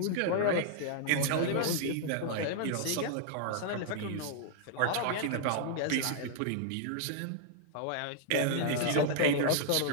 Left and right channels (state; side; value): different; both; correlation -0.01